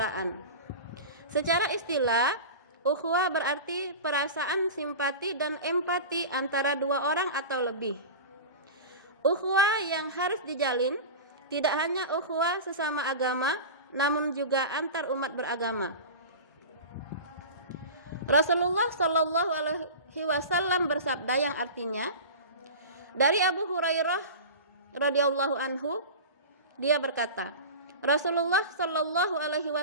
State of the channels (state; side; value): inverted; both; correlation -0.30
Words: Secara istilah, ukhuwah berarti perasaan simpati dan empati antara dua orang atau lebih. Ukhuwah yang harus dijalin tidak hanya ukhuwah sesama agama, namun juga antar umat beragama. Rasulullah Shallallahu Alaihi Wasallam bersabda yang artinya, dari Abu Hurairah radhiyallahu anhu, dia berkata, Rasulullah Shallallahu Alaihi